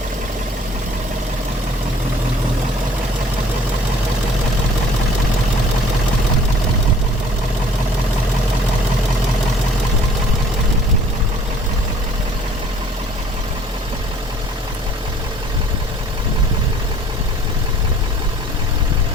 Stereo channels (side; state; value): both; normal; correlation 0.54